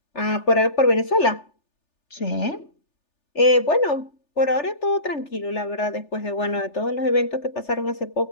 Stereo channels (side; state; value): right; late; 3.4 ms